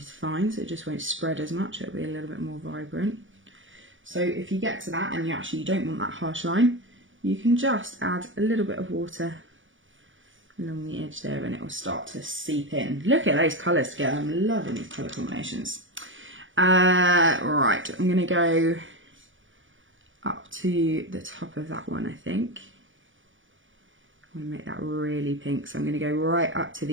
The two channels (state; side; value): late; left; 0.56 ms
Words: fine, so it just won't spread as much, it'll be a little bit more vibrant. So if you get to that and you don't want that harsh line, you can just add a little bit of water along the edge there and it will start to seep in. Look at those colours together, I'm loving these colour combinations. Right, I'm going to go up to the top of that one, I think. I want to make that really pink, so I'm going to go right up to